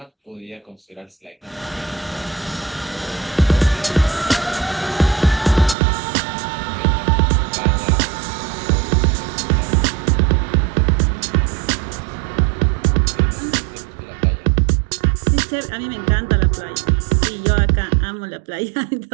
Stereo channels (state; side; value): drops out; left; at 5.8 s